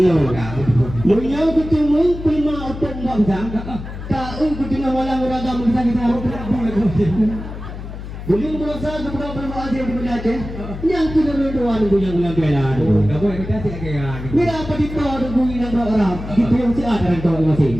Munya betul prima otak bangsa. Kau ketika malam ragam bisa kita boleh merasa kepada berdoa dia di Aceh. Yang kita berdoa nunggu yang benar. Tak boleh kita siaga. Bila apa dikau nunggu yang orang gitu yang si ada orang masing.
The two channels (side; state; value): left; noise; hum, 10 dB below the sound